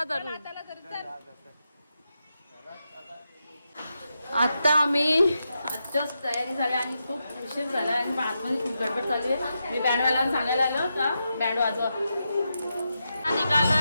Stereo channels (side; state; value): both; inverted; correlation -0.87